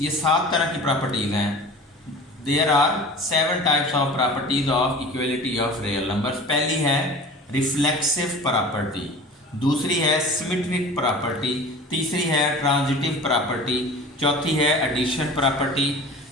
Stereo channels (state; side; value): normal; both; correlation 0.39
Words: 7 तरह की प्रॉपर्टीज़ हैं। There are 7 types of properties of equality of real numbers। पहली है रिफ्लेक्सिव प्रॉपर्टी, दूसरी है सिमेट्रिक प्रॉपर्टी, तीसरी है ट्रांजिटिव प्रॉपर्टी, चौथी है एडिशन प्रॉपर्टी,